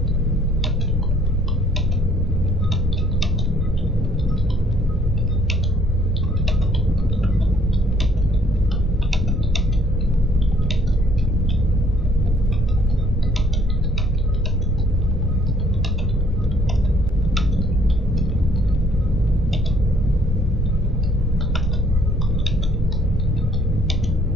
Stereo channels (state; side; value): normal; both; correlation 0.63